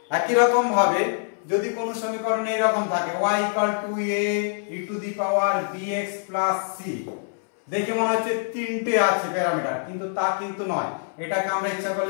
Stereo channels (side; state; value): right; silent; 62 dB below the other